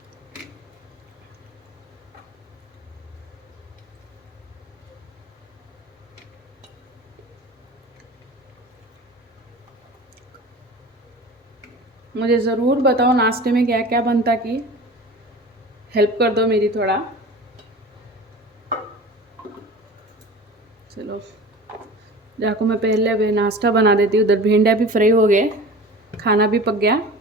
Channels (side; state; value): both; normal; correlation 0.38